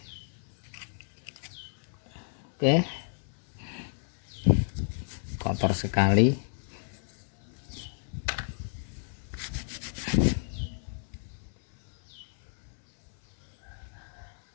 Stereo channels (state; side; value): silent; right; 57 dB below the other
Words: Oke, kotor sekali.